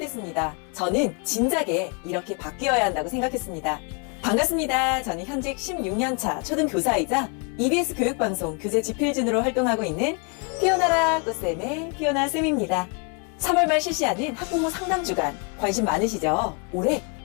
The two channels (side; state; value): right; quieter; 35.9 dB